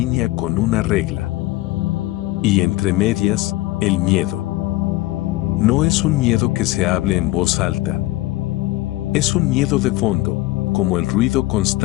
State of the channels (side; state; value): right; quieter; 18.2 dB